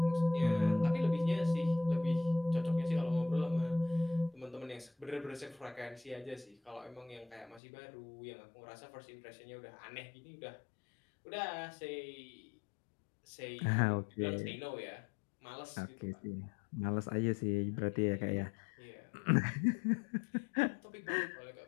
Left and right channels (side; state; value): right; drops out; at 7.6 s